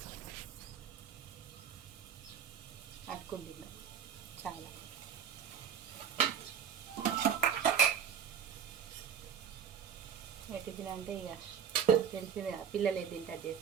అట్టుకుంది చాలా. టిఫిన్ అంటే ఇక తెలిసింది కదా, పిల్లలు ఏది తింటారు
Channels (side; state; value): left; quieter; 7.9 dB